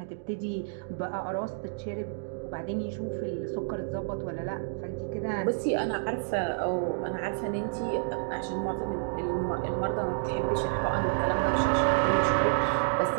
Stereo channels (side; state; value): left; silent; digital silence